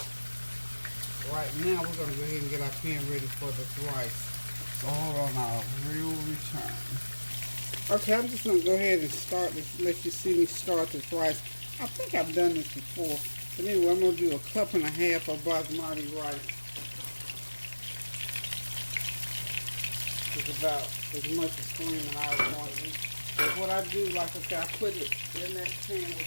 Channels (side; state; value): both; inverted; correlation -1.00